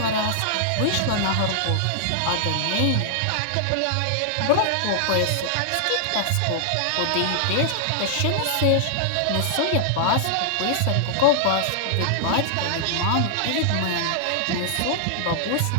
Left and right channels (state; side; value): different; both; correlation -0.01